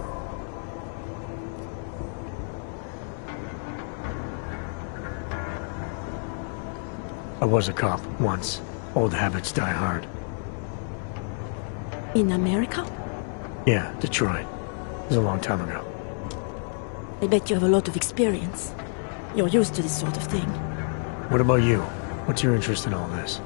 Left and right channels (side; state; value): right; silent; 60 dB below the other